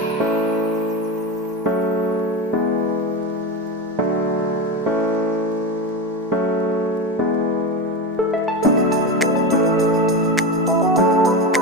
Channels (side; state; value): both; normal; correlation 0.20